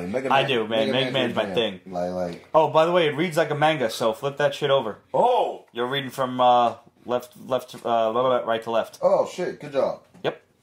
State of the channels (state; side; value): identical; both; correlation 1.00